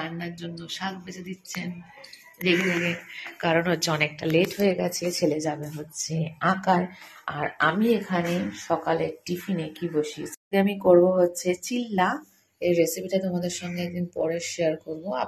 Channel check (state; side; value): identical; both; correlation 1.00